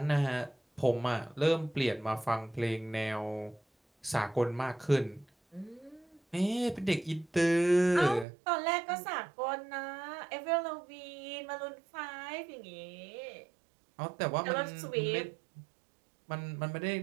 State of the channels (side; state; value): left; drops out; at 8.2 s